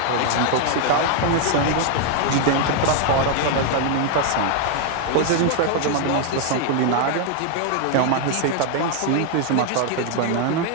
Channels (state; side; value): different; both; correlation 0.00